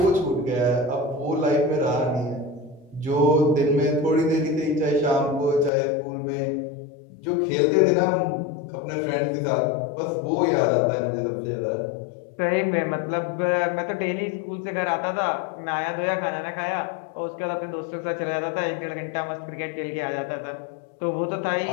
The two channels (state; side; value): drops out; right; at 5.7 s